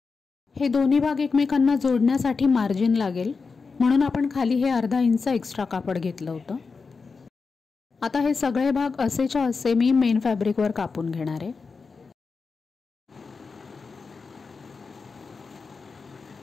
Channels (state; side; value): quieter; right; 4.7 dB